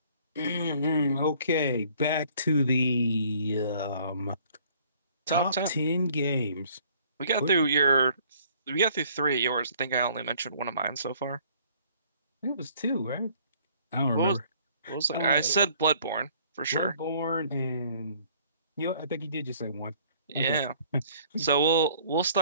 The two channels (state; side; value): inverted; both; correlation -0.58